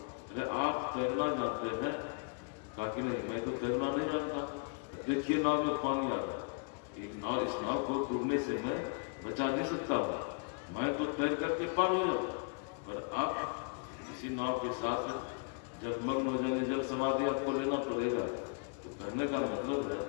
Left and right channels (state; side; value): quieter; right; 39.3 dB